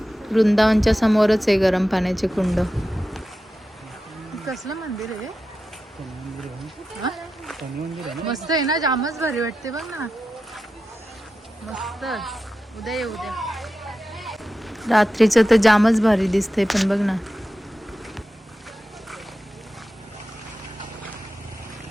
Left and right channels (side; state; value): both; normal; correlation 0.92